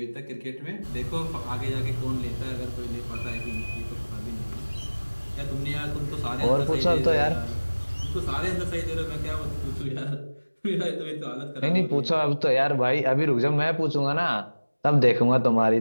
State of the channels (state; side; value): inverted; both; correlation -1.00